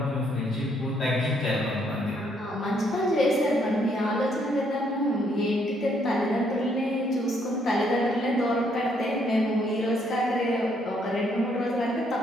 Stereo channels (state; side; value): normal; both; correlation 0.70